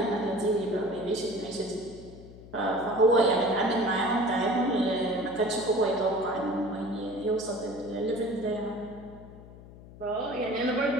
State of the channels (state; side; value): noise; left; hum, 18 dB below the sound